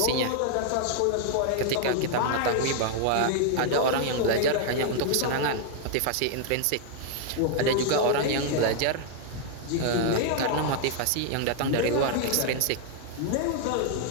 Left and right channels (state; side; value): different; both; correlation 0.00